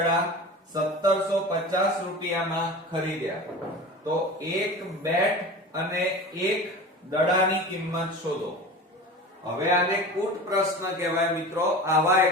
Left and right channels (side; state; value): both; normal; correlation 0.34